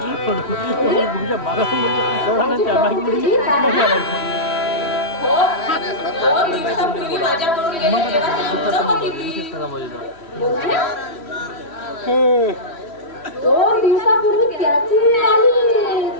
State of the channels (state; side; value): late; right; 3.1 ms